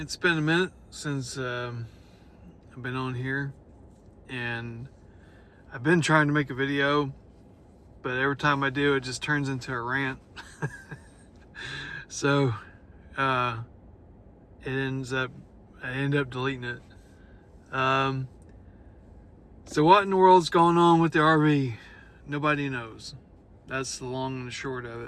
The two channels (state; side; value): identical; both; correlation 1.00